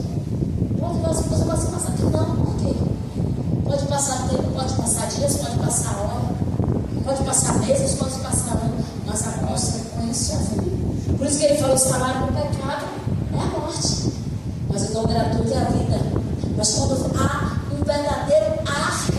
Você pode passar tempo, não, por quê? Pode passar tempo, pode passar dias, pode passar hora, pode passar meses, pode passar anos, mas a consequência vem. Por isso que ele falou: o salário do pecado é a morte, mas o dom gratuito é a vida. Mas quando há um verdadeiro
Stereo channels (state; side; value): identical; both; correlation 1.00